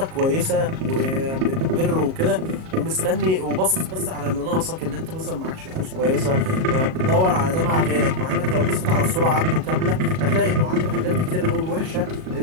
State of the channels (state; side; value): late; left; 38 ms